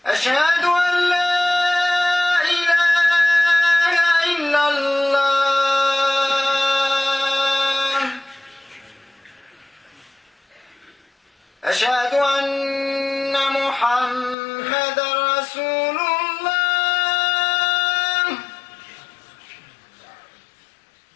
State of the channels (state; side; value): drops out; right; at 14.4 s